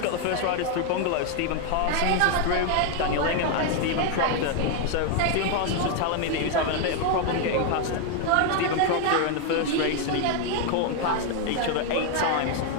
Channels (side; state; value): both; different; correlation 0.01